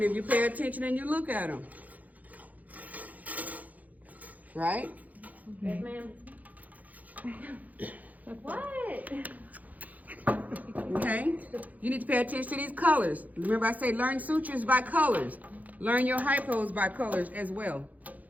if you pay attention and you look at them. Right? Yes, ma'am. What? Okay? You need to pay attention to these colors. Remember I say learn sutures by colors. Learn your hypos by colors as well.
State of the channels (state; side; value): late; left; 0.078 ms